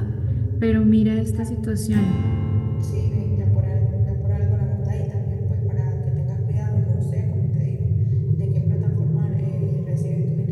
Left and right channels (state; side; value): identical; both; correlation 1.00